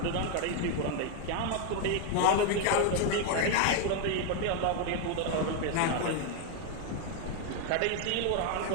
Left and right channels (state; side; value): different; both; correlation 0.01